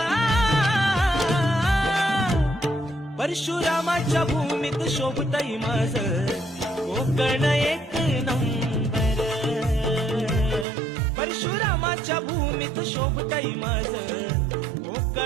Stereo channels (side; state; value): left; drops out; at 10.7 s